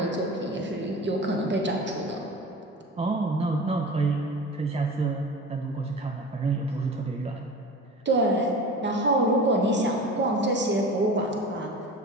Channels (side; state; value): both; normal; correlation 0.34